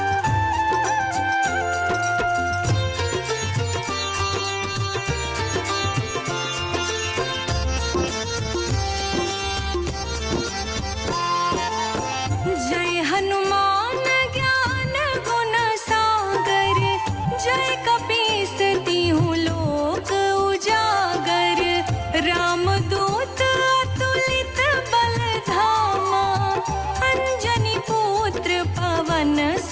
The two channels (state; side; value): identical; both; correlation 1.00